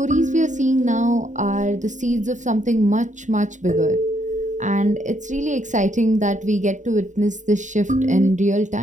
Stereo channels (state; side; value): late; left; 0.36 ms